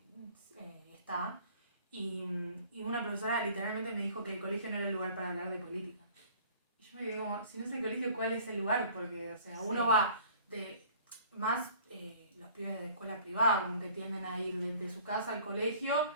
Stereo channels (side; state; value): both; inverted; correlation -0.51